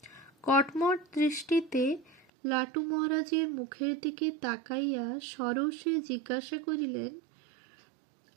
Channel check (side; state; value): left; drops out; at 2.2 s